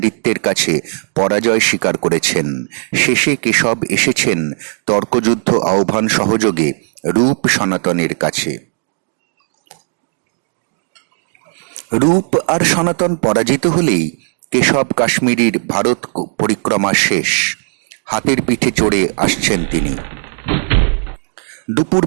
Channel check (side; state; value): left; silent; 56 dB below the other